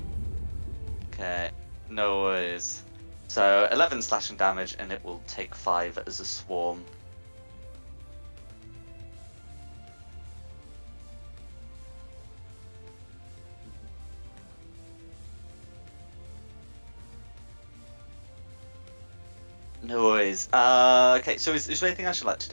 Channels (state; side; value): inverted; both; correlation -1.00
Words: Okay, no worries. So 11 slashing damage, and it will take 5 as a swarm. No worries. Okay, so is there anything else you'd like to